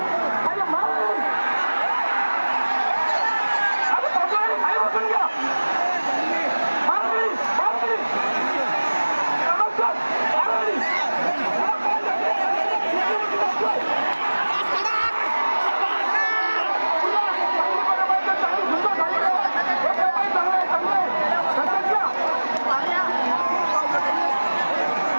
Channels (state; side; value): inverted; both; correlation -1.00